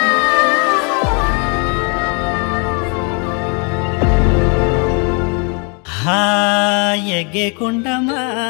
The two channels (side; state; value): right; quieter; 35.7 dB